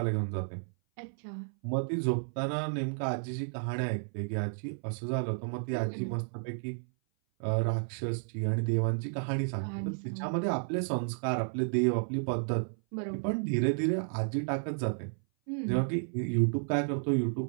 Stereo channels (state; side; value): silent; left; 56 dB below the other